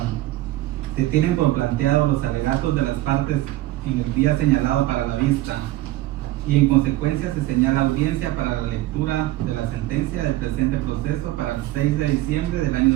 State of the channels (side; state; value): left; quieter; 16.4 dB